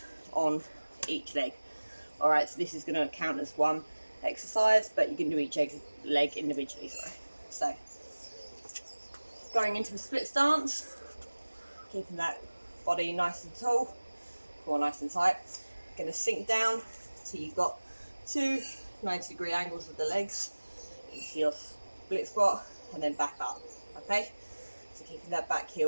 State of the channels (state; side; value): inverted; both; correlation -1.00